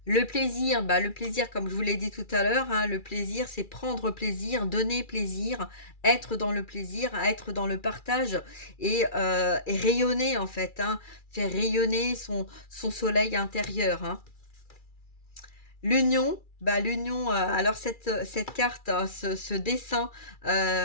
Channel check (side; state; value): right; late; 2.3 ms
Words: Le plaisir, comme je vous l'ai dit tout à l'heure, hein, le plaisir, c'est prendre plaisir, donner plaisir, être dans le plaisir, être dans le partage et rayonner en fait, hein, faire rayonner son soleil intérieur, hein. L'union, bah, l'union, alors cette carte, ce dessin,